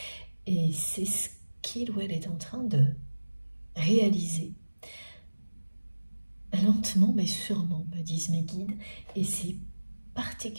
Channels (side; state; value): both; inverted; correlation -1.00